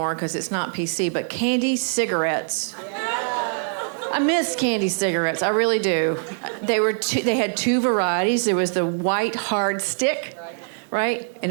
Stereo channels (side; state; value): left; silent; digital silence